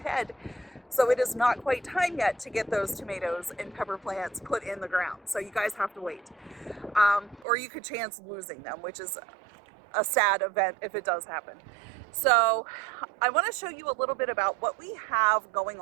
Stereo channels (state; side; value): drops out; left; at 7.5 s